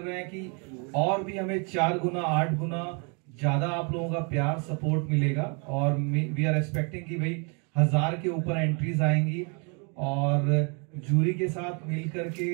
हैं कि और भी हमें 4 गुना 8 गुना ज्यादा आप लोगों का प्यार सपोर्ट मिलेगा. और वी आर एक्सपेक्टिंग कि भाई 1000 के ऊपर एंट्रीज आएंगी. और जूरी के साथ मिल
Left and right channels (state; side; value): quieter; left; 35.5 dB